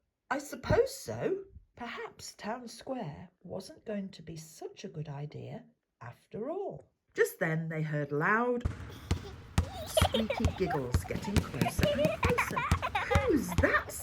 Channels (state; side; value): identical; both; correlation 1.00